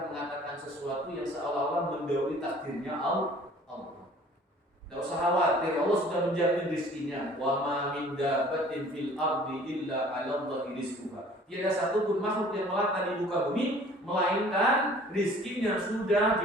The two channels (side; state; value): both; normal; correlation 0.51